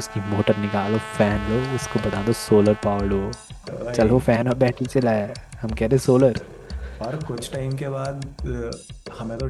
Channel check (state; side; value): identical; both; correlation 1.00